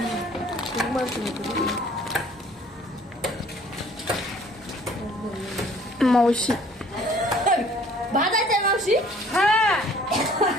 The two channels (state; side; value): normal; both; correlation 0.55